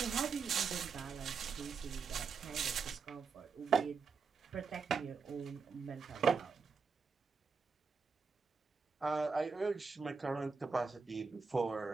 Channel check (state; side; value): quieter; left; 5.1 dB